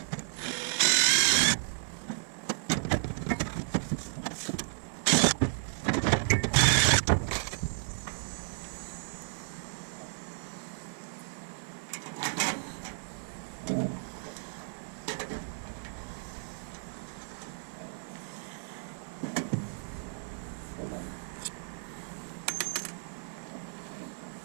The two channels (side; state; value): left; silent; 56 dB below the other